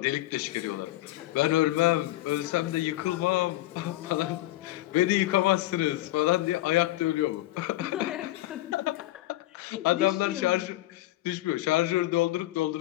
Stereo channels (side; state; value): right; quieter; 16.6 dB